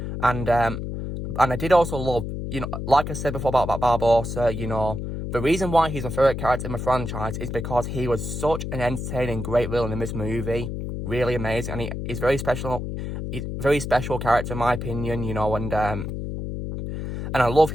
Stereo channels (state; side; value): noise; left; hum, 5 dB below the sound